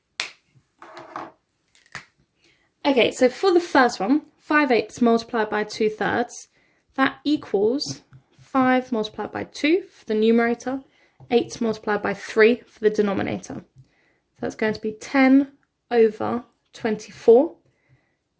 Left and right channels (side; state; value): both; identical; correlation 1.00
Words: Okay, so for the first one, 5/8 multiplied by 2/3, that equals 5 multiplied by 2 for the numerator, 8 multiplied by 3 for the denominator. So that's going to be 10/24,